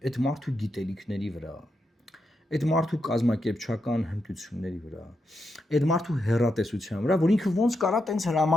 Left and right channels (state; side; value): normal; both; correlation 0.84